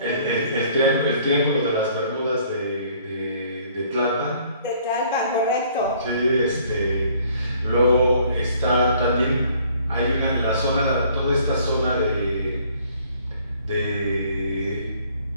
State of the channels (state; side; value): inverted; both; correlation -0.59